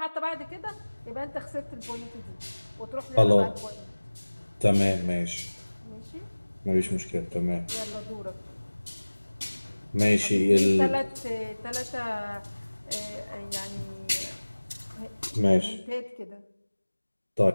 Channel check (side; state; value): both; inverted; correlation -1.00